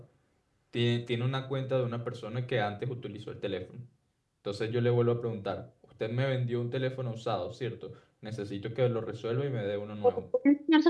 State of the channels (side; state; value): both; identical; correlation 1.00